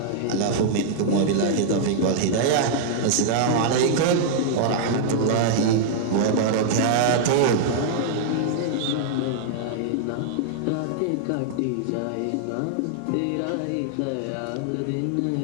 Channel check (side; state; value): both; different; correlation -0.01